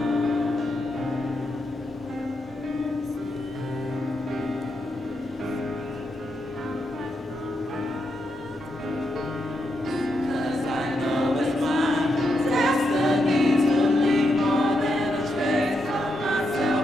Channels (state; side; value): normal; both; correlation 0.83